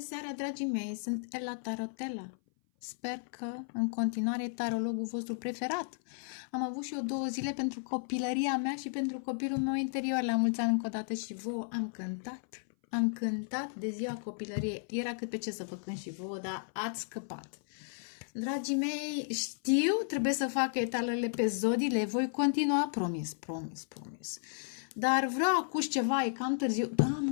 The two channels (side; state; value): right; silent; 55 dB below the other